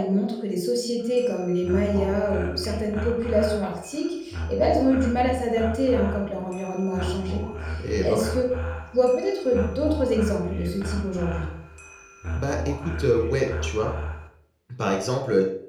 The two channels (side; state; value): both; identical; correlation 1.00